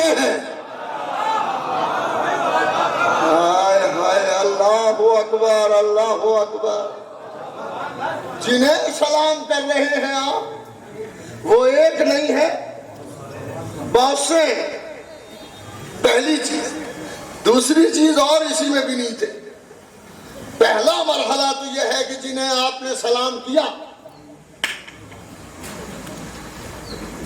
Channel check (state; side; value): identical; both; correlation 1.00